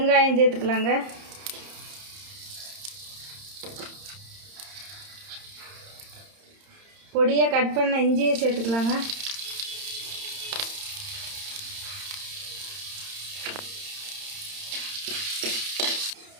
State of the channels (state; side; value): late; left; 31 ms